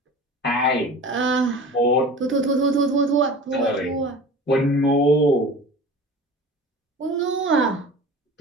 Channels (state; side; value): normal; both; correlation 0.38